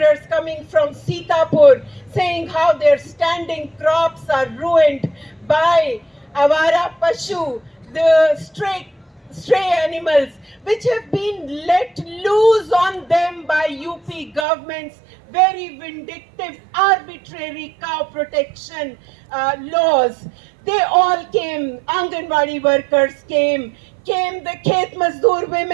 coming from Sitapur saying how their standing crops are ruined by Avara Pashu, the stray animals, which have been let loose on them by UP government's very vindictive, arbitrary cow protection laws. They all came. Anganwadi workers came the Khet Mazdoor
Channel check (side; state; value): left; drops out; at 14.5 s